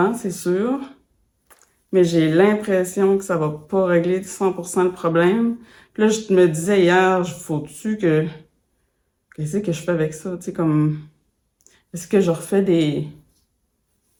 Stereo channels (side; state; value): both; identical; correlation 1.00